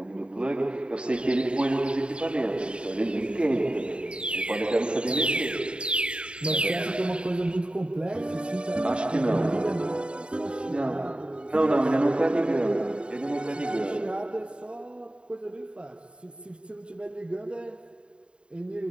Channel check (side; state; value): left; late; 0.054 ms